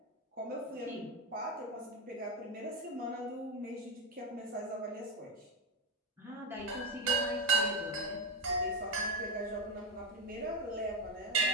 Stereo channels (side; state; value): both; normal; correlation 0.10